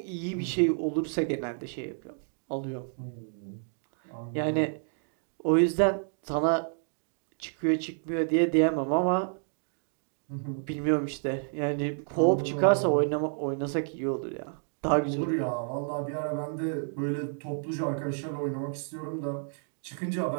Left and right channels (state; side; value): silent; left; digital silence